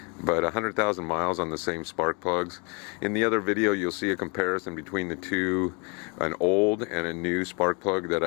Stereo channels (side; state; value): right; quieter; 31.7 dB